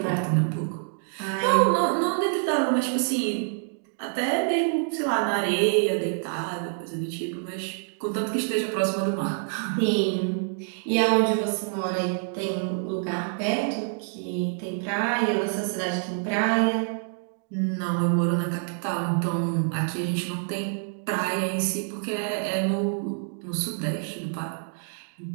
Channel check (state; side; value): silent; left; digital silence